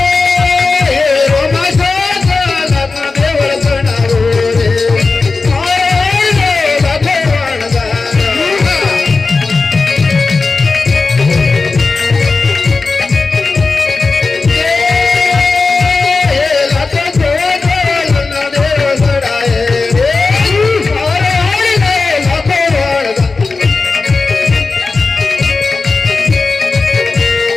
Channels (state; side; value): quieter; right; 4.0 dB